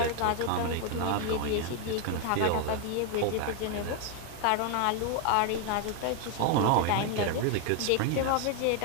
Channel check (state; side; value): different; both; correlation 0.01